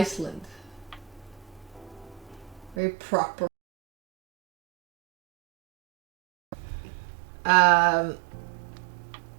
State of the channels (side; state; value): left; drops out; at 2.8 s